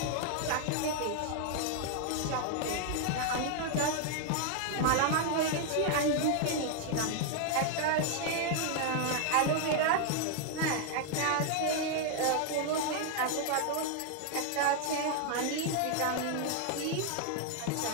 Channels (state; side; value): different; both; correlation 0.00